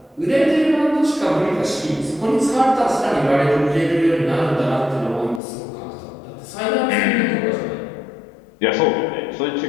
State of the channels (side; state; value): right; drops out; at 5.4 s